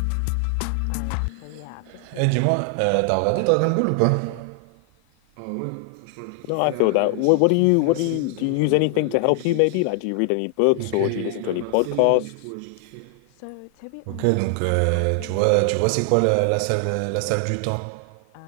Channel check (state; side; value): different; both; correlation 0.00